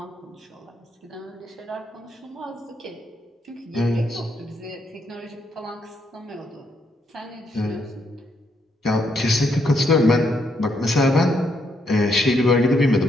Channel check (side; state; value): both; normal; correlation 0.76